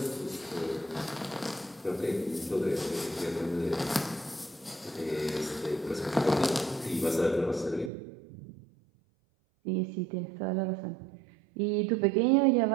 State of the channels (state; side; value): drops out; left; at 7.9 s